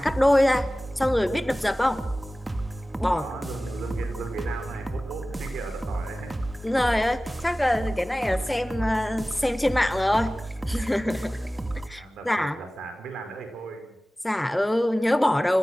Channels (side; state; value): both; normal; correlation 0.97